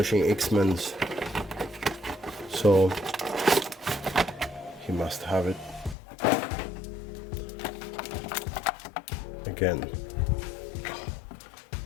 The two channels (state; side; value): drops out; right; at 6.0 s